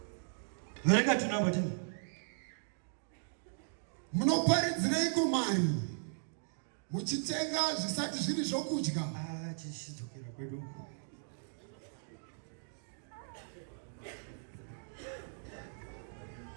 Verenga tunamba tini. Munoparidzireiko mari muchitenga zvisati zviri zvokudya? Chichidzokera kwedu.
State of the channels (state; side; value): silent; left; digital silence